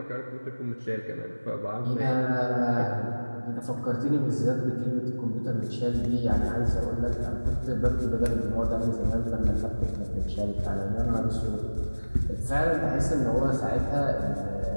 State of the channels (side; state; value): both; inverted; correlation -1.00